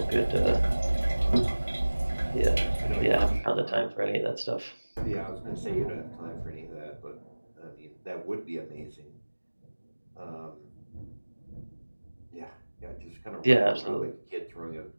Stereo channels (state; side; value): inverted; both; correlation -1.00